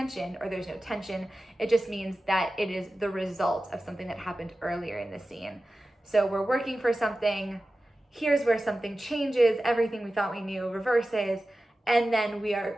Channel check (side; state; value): both; normal; correlation 0.95